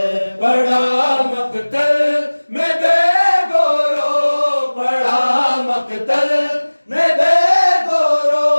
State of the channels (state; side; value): inverted; both; correlation -1.00